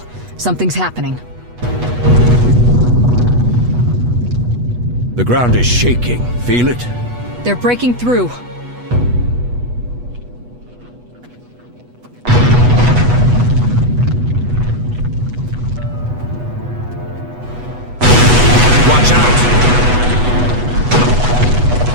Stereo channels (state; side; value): late; left; 8.2 ms